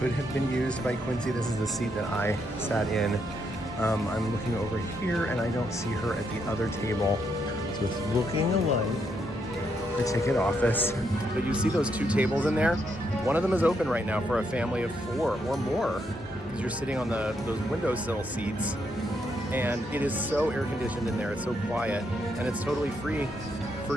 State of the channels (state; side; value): normal; both; correlation 0.77